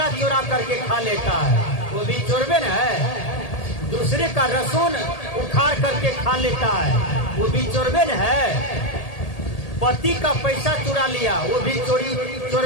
चुरा करके खा लेता है, वो भी चोरबे न है। दूसरे का लहसुन उखाड़ करके खा लेता है, वो भी चोरबे न है। पति का पैसा चुरा लिया, वो भी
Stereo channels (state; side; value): late; right; 1.8 ms